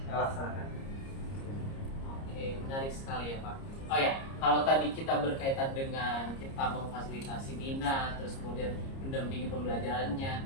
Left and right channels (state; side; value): late; right; 30 ms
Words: laksanakan. Oke. Oke, menarik sekali ya Pak. Oh ya, kalau tadi kita berkaitan dengan kita memfasilitasi minat, terus kemudian mendampingi pembelajarannya,